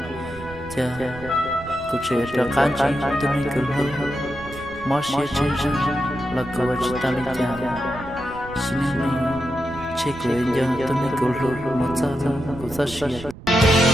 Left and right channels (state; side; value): noise; right; rumble, 15 dB below the sound